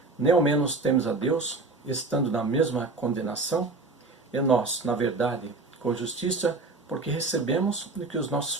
Nem ao menos temes a Deus, estando na mesma condenação? E nós, na verdade, com justiça, porque recebemos o que os nossos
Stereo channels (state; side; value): quieter; left; 3.5 dB